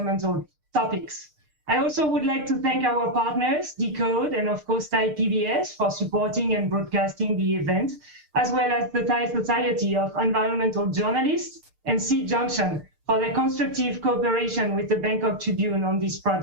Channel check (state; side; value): late; left; 6.6 ms